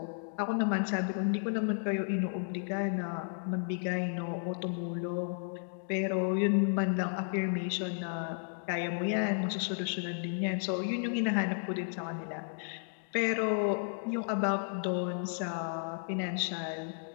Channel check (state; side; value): silent; right; digital silence